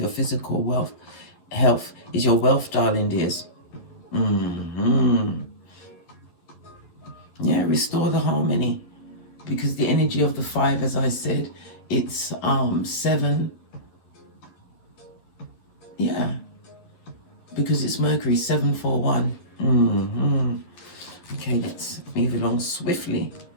physical health is your wealth, darling dears. Yeah, restore the harmony. Because the energy of the 5, as I said, it's 7. Yeah, because it's Mercury, 741. Okay, let's move along swiftly.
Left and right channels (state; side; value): late; right; 11 ms